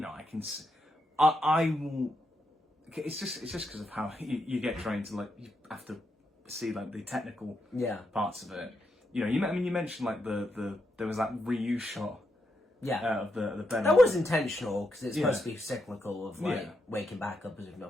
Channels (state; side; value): normal; both; correlation 0.82